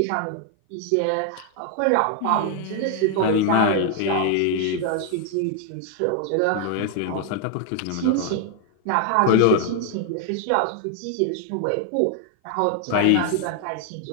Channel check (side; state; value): both; different; correlation 0.00